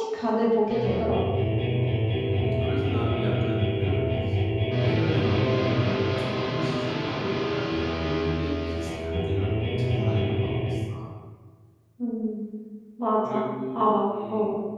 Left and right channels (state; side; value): identical; both; correlation 1.00